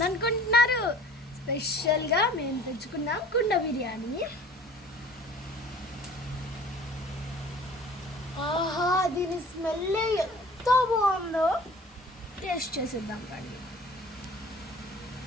స్పెషల్గా మేము తెచ్చుకున్నాం కుండ బిర్యానీ. ఆహా, దీని స్మెల్ ఎంత బాగుందో, టేస్ట్ చేసేద్దాం కానీ.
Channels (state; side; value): normal; both; correlation 0.47